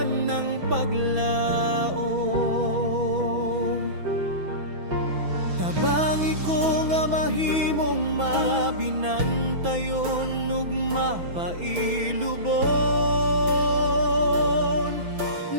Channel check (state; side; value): late; left; 6.1 ms